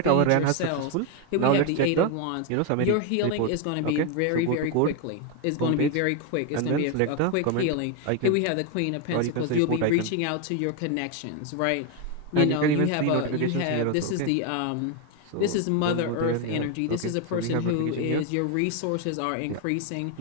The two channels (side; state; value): both; different; correlation 0.01